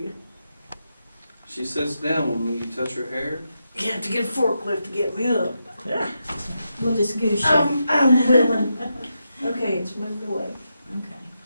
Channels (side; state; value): both; inverted; correlation -0.86